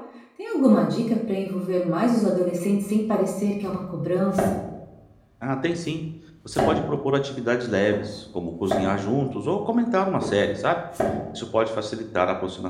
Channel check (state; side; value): identical; both; correlation 1.00